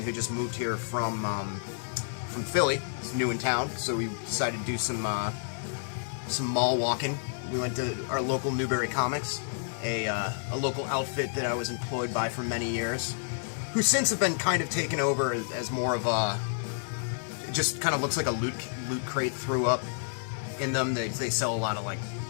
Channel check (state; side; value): silent; right; digital silence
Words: who just moved here from Philly. He's new in town, so we decided to do some mall walking. We went to our local Newbury Comics, a local outfit that I was employed by for many years, who since have been kind of taken over as more of a, it just kind of looks like a loot crate threw up in them. They sell a lot of like